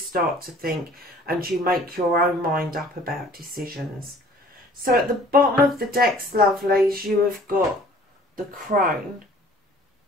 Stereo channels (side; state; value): both; normal; correlation 0.52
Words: to think and you make your own mind up about decisions. So at the bottom of the decks, lovelies, you have got the Crone,